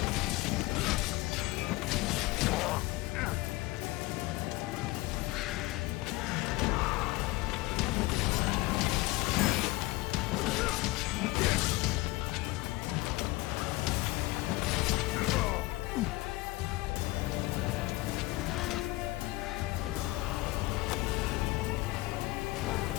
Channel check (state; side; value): quieter; right; 20.3 dB